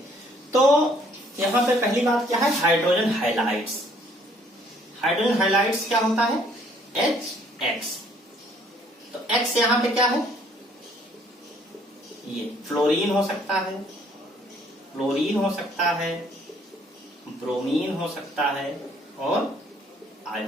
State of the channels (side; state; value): both; normal; correlation 0.62